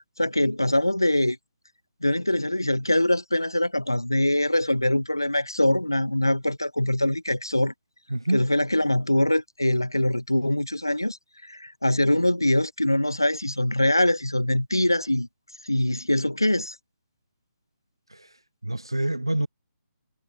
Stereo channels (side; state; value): both; inverted; correlation -0.97